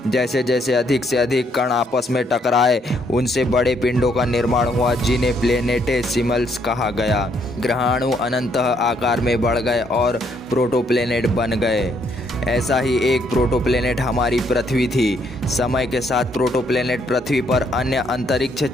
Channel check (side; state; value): both; normal; correlation 0.71